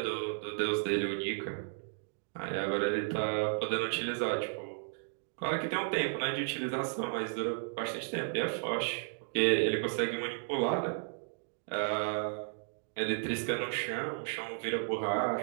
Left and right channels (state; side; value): silent; left; digital silence